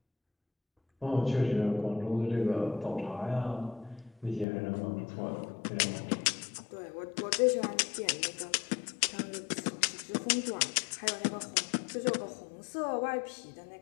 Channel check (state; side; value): drops out; right; at 4.5 s